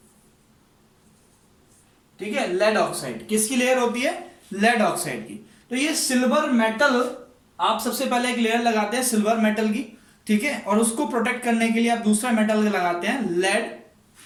ठीक है, लेड ऑक्साइड किसकी लेयर होती है, लेड ऑक्साइड की। तो ये सिल्वर मेटल, आप सबसे पहले एक लेयर लगाते हैं सिल्वर मेटल की, ठीक है, और उसको प्रोटेक्ट करने के लिए आप दूसरा मेटल लगाते हैं लेड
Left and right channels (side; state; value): both; identical; correlation 1.00